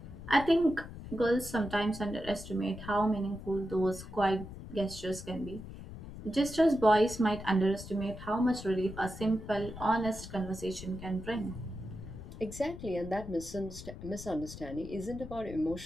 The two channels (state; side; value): noise; left; rumble, 12 dB below the sound